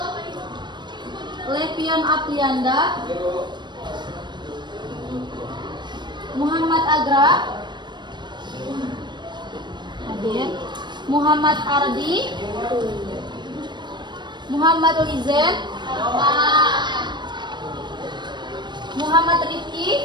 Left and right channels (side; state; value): left; late; 0.22 ms